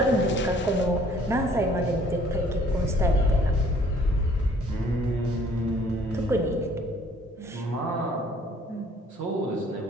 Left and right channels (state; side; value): normal; both; correlation 0.58